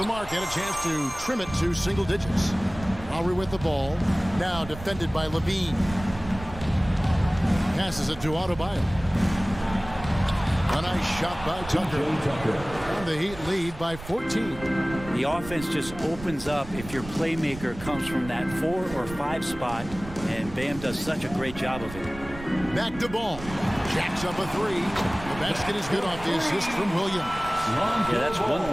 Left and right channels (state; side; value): noise; right; rumble, 14 dB below the sound